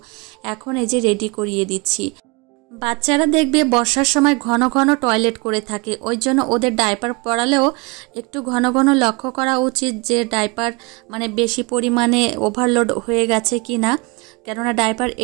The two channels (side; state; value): left; quieter; 28.1 dB